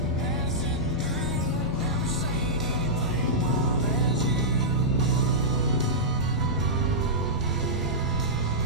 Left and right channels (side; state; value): both; normal; correlation -0.12